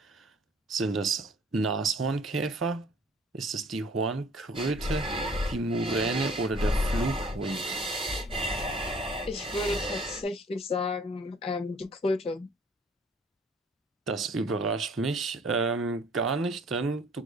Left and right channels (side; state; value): both; normal; correlation 0.54